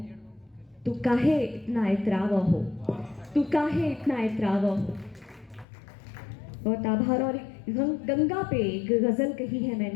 तू काहे इतना इतरावा हो, तू काहे इतना इतरावा हो। बहुत आभार। और गंगा पे एक गज़ल कही है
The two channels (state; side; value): drops out; right; at 5.7 s